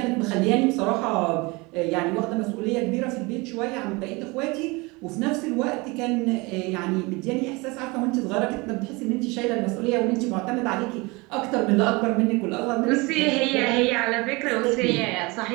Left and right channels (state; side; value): quieter; left; 25.3 dB